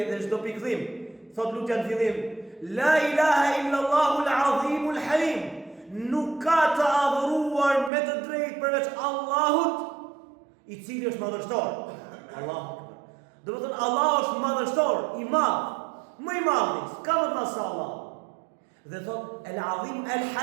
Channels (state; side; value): drops out; left; at 7.9 s